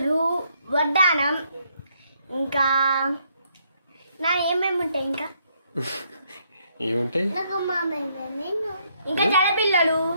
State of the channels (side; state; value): both; inverted; correlation -0.72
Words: వడ్డానం, ఇంకా నా ఏమేమి ఉంటాయి ఇంకా ఏముంటాయి ఇంకా జడపిల్లలు